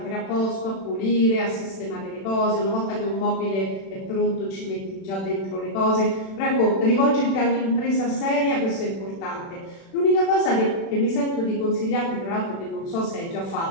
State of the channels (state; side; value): late; right; 36 ms